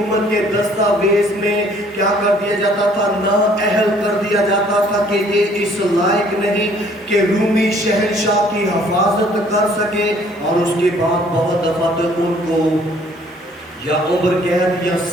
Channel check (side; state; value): both; normal; correlation 0.59